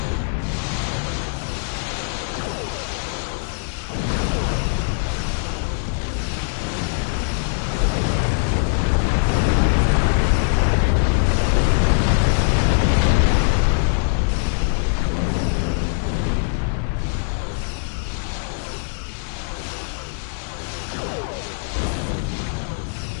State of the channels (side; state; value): right; silent; digital silence